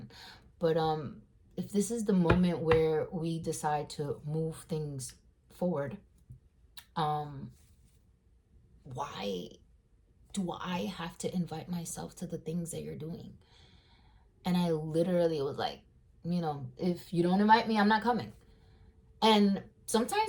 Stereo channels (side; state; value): both; identical; correlation 1.00